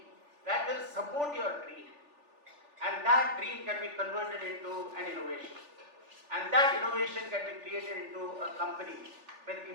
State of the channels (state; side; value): late; left; 3.4 ms